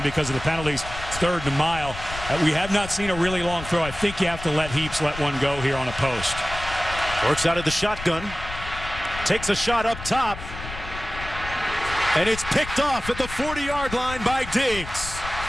because of the penalties, it's 3rd and a mile. We have not seen a really long throw. I think you have to let Heaps let one go here on a post. Works out of the shotgun. takes a shot up top. And it's picked off at the 40-yard line by Diggs.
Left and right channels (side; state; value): left; noise; rumble, 11 dB below the sound